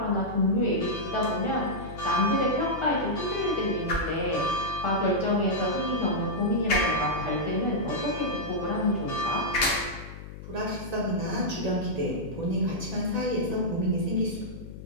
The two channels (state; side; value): noise; left; hum, 13 dB below the sound